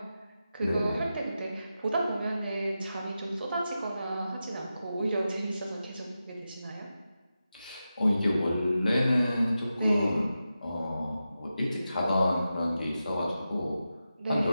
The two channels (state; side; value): inverted; both; correlation -0.91